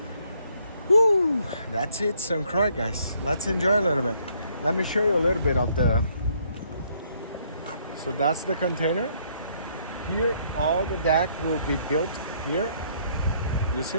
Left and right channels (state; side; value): inverted; both; correlation -0.67